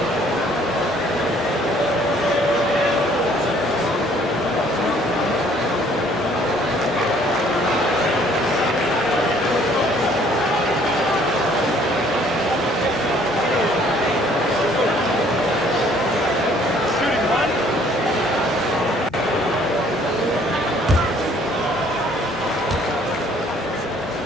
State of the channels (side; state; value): both; normal; correlation 0.59